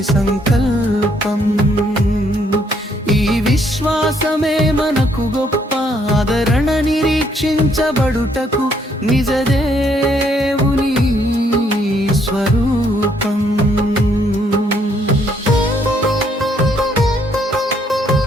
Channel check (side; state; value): both; normal; correlation 0.69